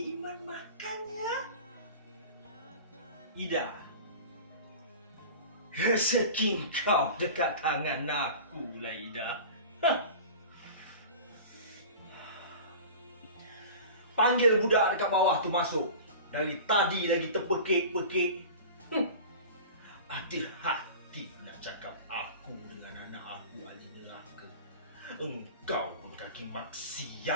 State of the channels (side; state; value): both; inverted; correlation -0.36